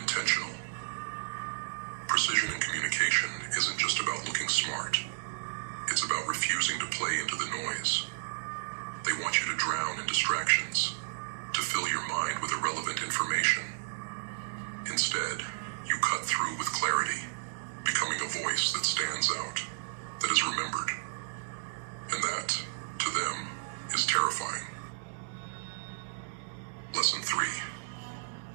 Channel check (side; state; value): left; silent; digital silence